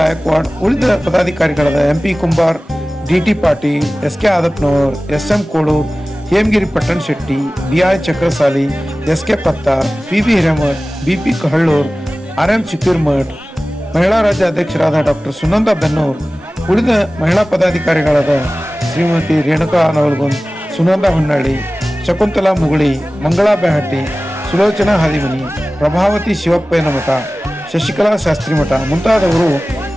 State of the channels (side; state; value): both; normal; correlation 0.97